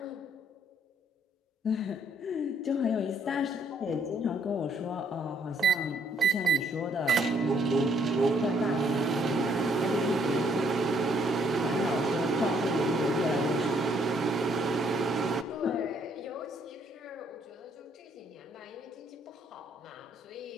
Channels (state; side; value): normal; both; correlation 0.67